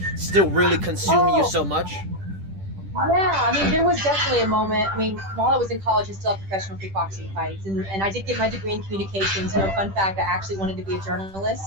still really consume you so much? Yeah, I mean, there was definitely a moment. I mean, while I was in college, I still had professional kickboxing fights, and I did get my degree in communications. Fun fact, I actually wanted to be a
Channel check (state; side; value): late; left; 10 ms